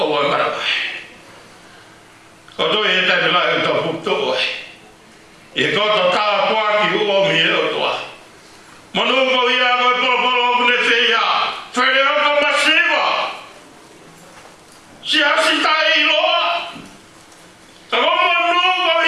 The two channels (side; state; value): both; identical; correlation 1.00